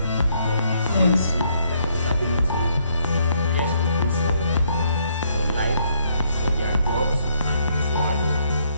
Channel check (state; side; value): inverted; both; correlation -0.71